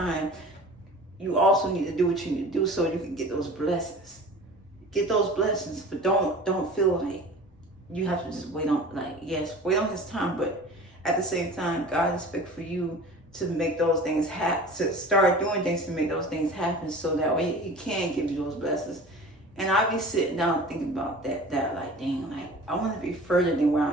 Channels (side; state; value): both; normal; correlation 0.40